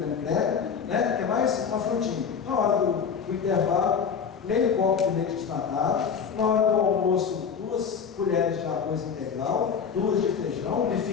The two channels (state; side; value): quieter; right; 6.7 dB